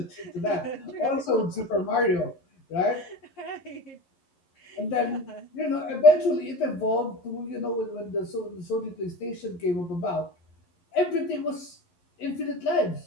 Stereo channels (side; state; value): right; late; 11 ms